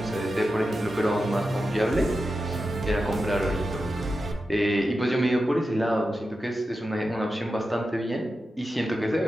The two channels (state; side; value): normal; both; correlation 0.91